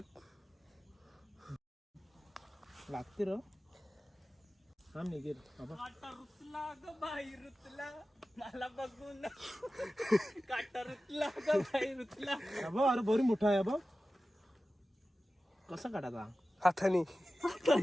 लागते र हा निघेल. काटा रुतला ग बाई रुतला, मला बघून काटा रुतला ग बाई रुतला. अरे बरी मोठा आहे बघ. कसा काटाचा? हाताने.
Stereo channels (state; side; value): normal; both; correlation 0.95